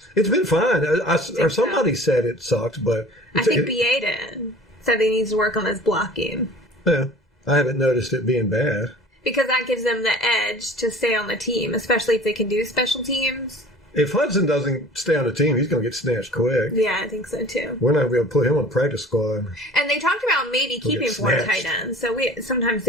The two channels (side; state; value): both; normal; correlation 0.45